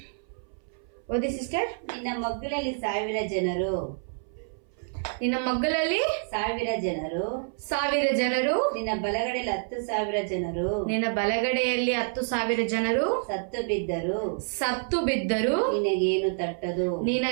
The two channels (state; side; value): silent; left; 59 dB below the other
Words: ಓದಿ ಸಿಸ್ಟರ್. ನಿನ್ನ ಮಗ್ಗಲಲ್ಲಿ 1,000 ಜನರು, ನಿನ್ನ ಮಗ್ಗಲಲ್ಲಿ 1,000 ಜನರು, ನಿನ್ನ ಬಲಗಡೆಯಲ್ಲಿ 10,000 ಜನರು, ನಿನ್ನ ಬಲಗಡೆಯಲ್ಲಿ 10,000 ಜನರು ಸತ್ತು ಬಿದ್ದರು ನಿನಗೇನು ತಟ್ಟದು.